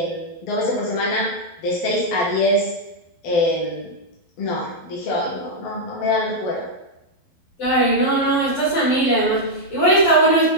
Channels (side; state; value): right; late; 12 ms